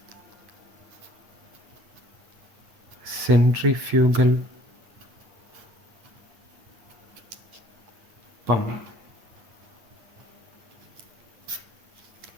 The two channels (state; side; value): late; left; 9.1 ms